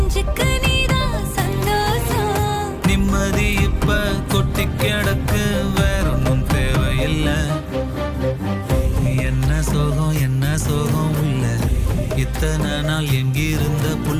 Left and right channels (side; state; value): both; identical; correlation 1.00